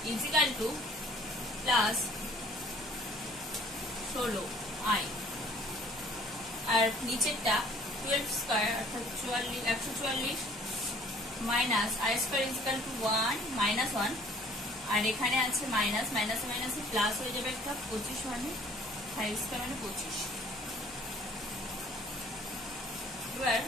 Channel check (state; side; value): noise; left; hum, 26 dB below the sound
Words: equal to plus 16i আর নিচেরটা 12 স্কয়ার অর্থাৎ 144 minus i square equal to 1 minus 1 আর এখানে আছে মাইনাস মাইনাসে মাইনাসে প্লাস হয়ে যাবে একটা 25 মানে 5 স্কয়ার মানে 25 এবার